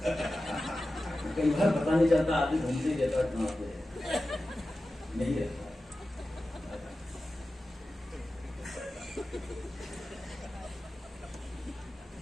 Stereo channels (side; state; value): both; normal; correlation 0.94